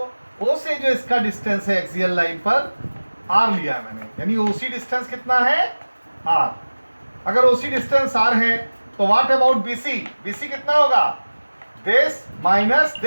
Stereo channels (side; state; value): both; inverted; correlation -1.00